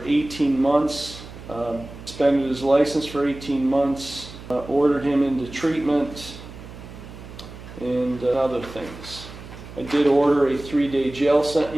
18 months, suspended his license for 18 months, ordered him into treatment, and other things. I did order a 3-day jail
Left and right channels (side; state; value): right; noise; hum, 15 dB below the sound